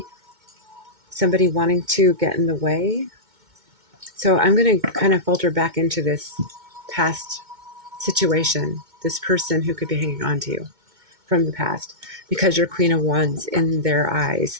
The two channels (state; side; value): late; left; 2.2 ms